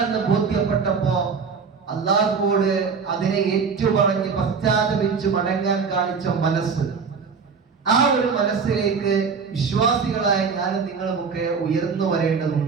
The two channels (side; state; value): left; quieter; 5.5 dB